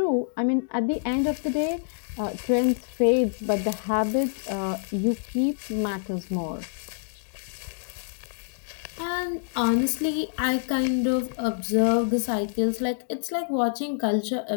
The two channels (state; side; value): silent; right; digital silence